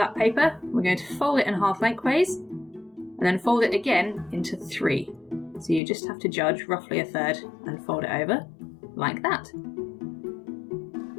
paper, we're going to fold it in half lengthways and then fold it again into three. So you just have to judge roughly a third and fold it over like that.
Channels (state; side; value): drops out; right; at 5.8 s